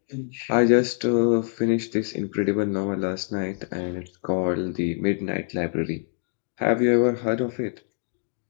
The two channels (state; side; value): silent; right; digital silence